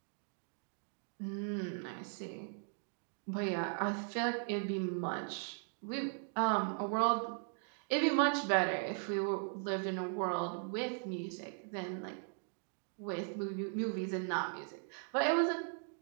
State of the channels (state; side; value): silent; left; 52 dB below the other